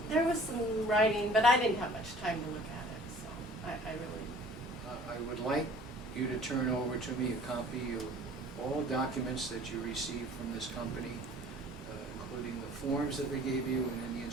there was some writing, but I didn't have much time to look at it, so I really... I would like you to turn over to me a copy of all documents that you received from this company, including the forms that they gave you and any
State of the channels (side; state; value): both; normal; correlation 0.50